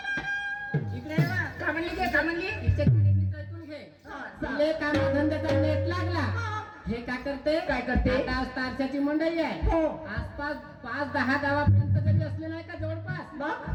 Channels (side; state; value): both; identical; correlation 1.00